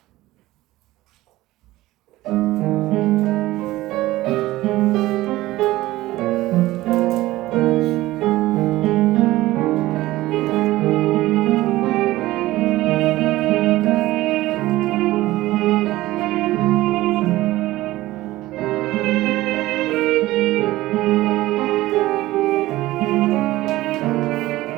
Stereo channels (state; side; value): quieter; left; 17.2 dB